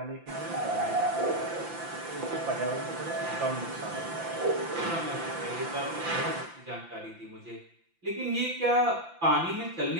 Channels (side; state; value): left; late; 5.9 ms